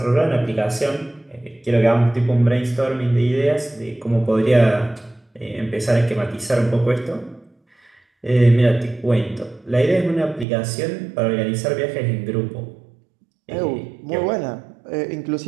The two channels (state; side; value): drops out; left; at 10.5 s